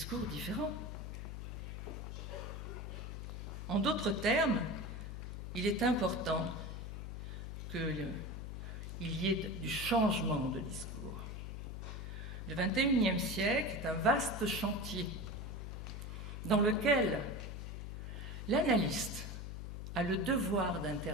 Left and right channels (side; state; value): left; noise; hum, 6 dB below the sound